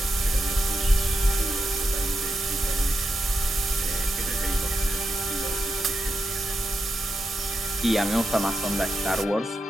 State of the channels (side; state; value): both; normal; correlation 0.86